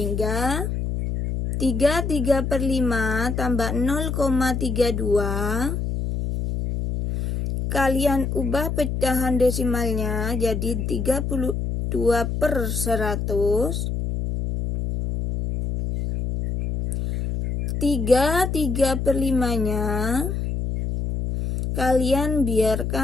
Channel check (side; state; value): left; noise; hum, 2 dB below the sound